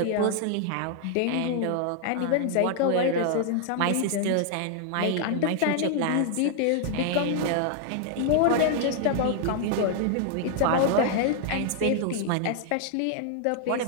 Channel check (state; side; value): different; both; correlation 0.00